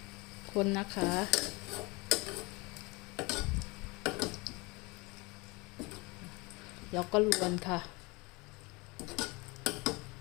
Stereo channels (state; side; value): quieter; right; 25.8 dB